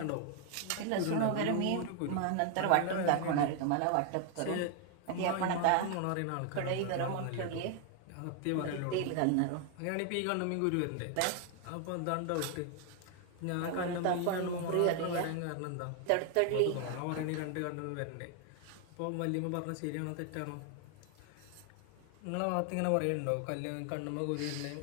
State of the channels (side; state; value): both; different; correlation 0.00